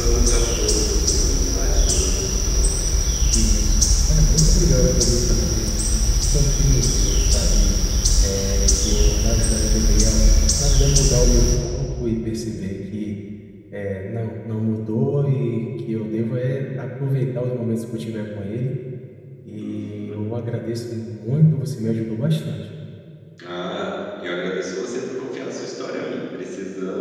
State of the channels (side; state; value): both; identical; correlation 1.00